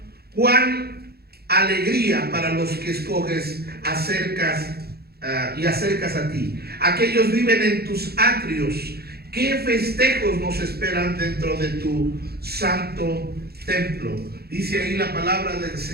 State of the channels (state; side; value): late; left; 0.46 ms